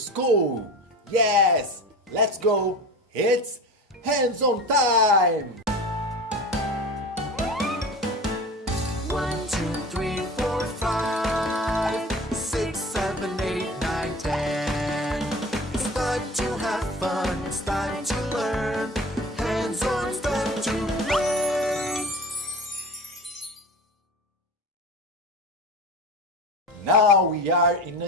Yes, let's go. It's Hands On time. 1, 2, 3, 4, 5, 6, 7, 8, 9, 10. It's time to have fun, it's time to learn. Hands on, it's time to play. Now we are in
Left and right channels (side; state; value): both; normal; correlation 0.34